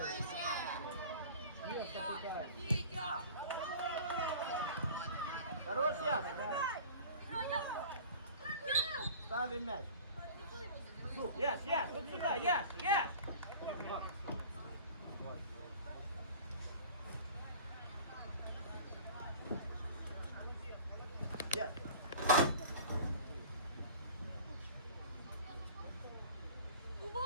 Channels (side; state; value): both; inverted; correlation -0.42